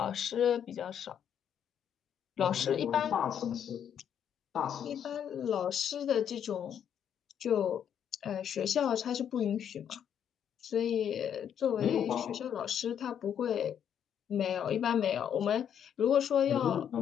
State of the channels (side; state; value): right; quieter; 8.9 dB